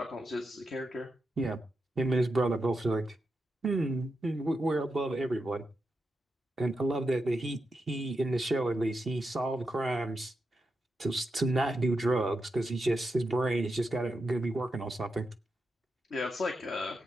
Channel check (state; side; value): normal; both; correlation 0.87